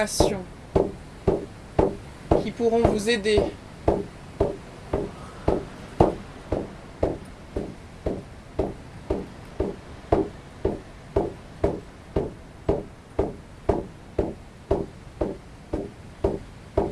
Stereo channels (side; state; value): both; identical; correlation 1.00